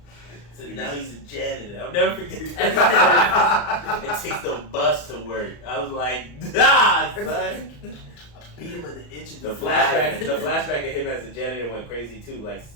So now he's a janitor. I'll never forget that. It takes the bus to work. I was like, son. I beat him in the inch of The flashback of him as a janitor went crazy too. Like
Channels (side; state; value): right; late; 34 ms